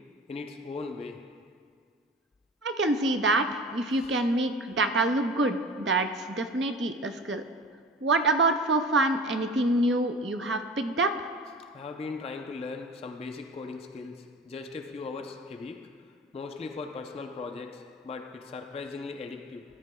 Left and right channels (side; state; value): both; normal; correlation 0.37